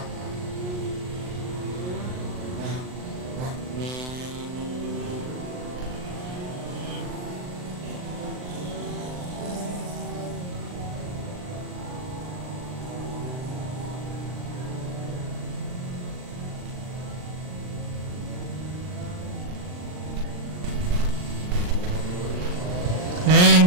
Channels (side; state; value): left; late; 39 ms